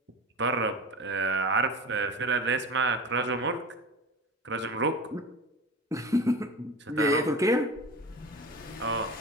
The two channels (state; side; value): normal; both; correlation 0.32